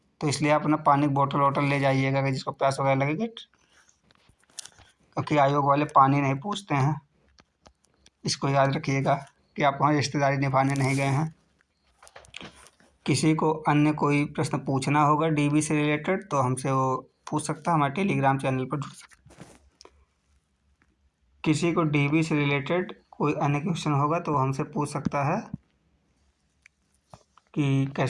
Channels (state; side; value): identical; both; correlation 1.00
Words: तो इसलिए आप अपना पानी की बोतल वोटल ले जाइएगा अगर जिसको प्यास वगैरह लगेगी, क्योंकि आयोग वाले पानी नहीं पूछते हैं। इसको याद रखिएगा कि आप वहाँ रिश्तेदारी निभाने नहीं गए हैं। किसी को अन्य कोई प्रश्न पूछना होगा डीबी से रिलेटेड तो हमसे वो पूछ सकता है, हमारे टेलीग्राम चैनल पर जुड़ सकता है। किसी को डीबी से रिलेटेड कोई अन्य क्वेश्चन होगा तो हमसे पूछ सकता है कि